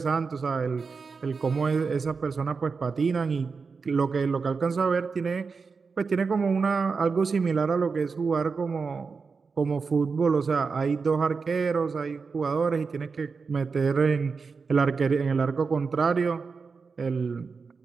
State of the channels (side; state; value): left; quieter; 4.9 dB